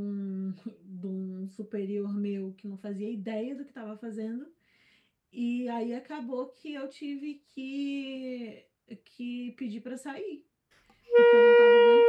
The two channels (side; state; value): both; identical; correlation 1.00